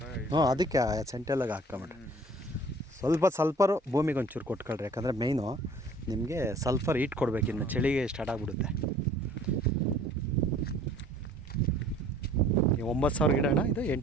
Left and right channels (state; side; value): normal; both; correlation 0.52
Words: ಹ್ಞೂ, ಅದಕ್ಕೆ ಸೆಂಟೆಲ್ಲಾಗ ಹಾಕ್ಕೊಂಬಿಡ್ರಿ. ಸಲ್ಫರು ಭೂಮಿಗೆ ಒಂಚೂರು ಕೊಟ್ಕೊಳ್ರಿ. ಯಾಕಂದರೆ ಮೇಯ್ನು ನಿಮಗೆ ಸಲ್ಫರ್ ಹೀಟ್ ಕೊಡಬೇಕು. ಇನ್ನು ಚಳಿಗೆ ಸ್ಟಾರ್ಟ್ ಆಗಿಬಿಡುತ್ತೆ. 9,000 ಗಿಡ ಅಣ್ಣ, ಇದು